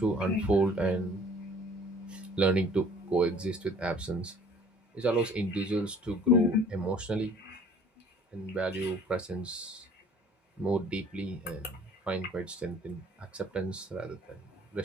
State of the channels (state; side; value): normal; both; correlation 0.53